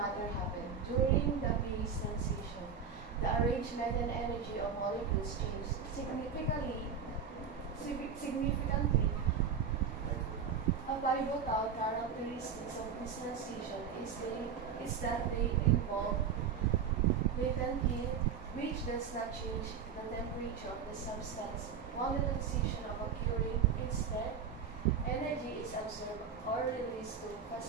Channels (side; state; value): left; quieter; 6.7 dB